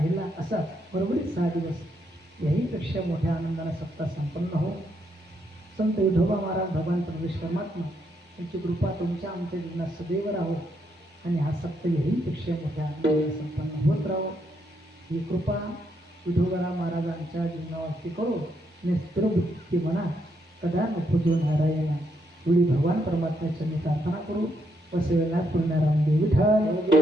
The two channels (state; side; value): normal; both; correlation 0.77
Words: असा बरोबरीत 6 दिवस याहीपेक्षा मोठ्या आनंदानं सप्ताह संपन्न हो संत विठोबा महाराज भगवान परमेश्वर परमात्मा यांची कृपा तुमच्या आमच्या जीवनात सदैव राहो आणि हा सप्ताह याहीपेक्षा मोठ्या आनंदानं संपन्न होत राहो ही कृपा विठोबा महाराजांच्या जीवनावरती करो आणि स्थिरबुद्धी म्हणा कदा नको जो नारायणा एवढी भगवान परमात्म्याची मी प्रार्थना करू वसवेला पूर्णाराम